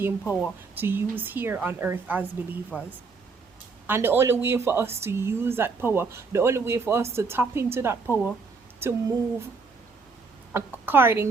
power to use here on earth as believers. And the only way for us to use that power, the only way for us to tap into that power, to move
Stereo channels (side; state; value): left; quieter; 4.5 dB